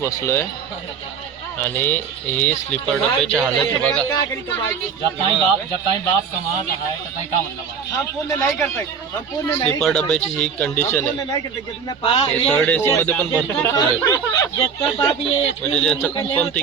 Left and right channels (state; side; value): quieter; left; 6.4 dB